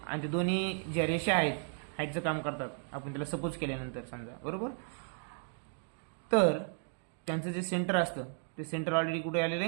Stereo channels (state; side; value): silent; left; 55 dB below the other